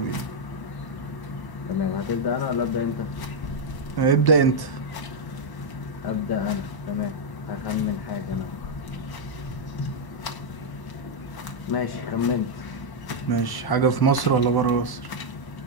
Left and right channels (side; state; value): right; late; 1.0 ms